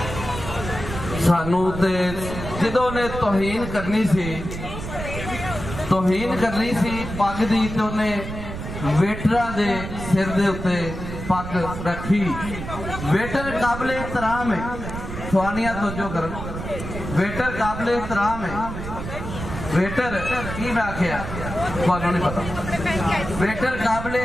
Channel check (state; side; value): noise; right; rumble, 7 dB below the sound